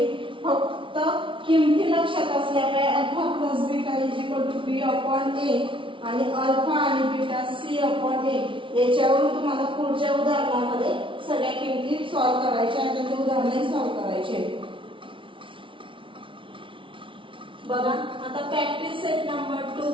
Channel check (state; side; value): late; left; 0.25 ms